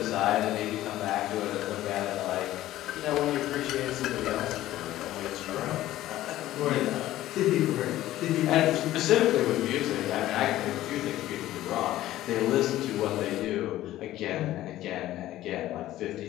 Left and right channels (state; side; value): quieter; right; 14.6 dB